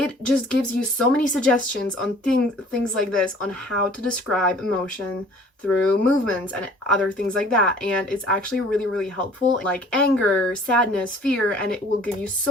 just gives you so many suggestions on things like this, on how to describe emotion through movements and other things like that. And it's actually really, really helpful, like anger, sadness, fear, and it will give you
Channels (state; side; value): normal; both; correlation 0.51